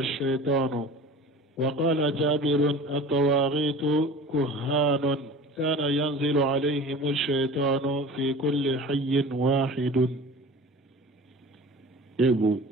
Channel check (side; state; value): both; normal; correlation 0.39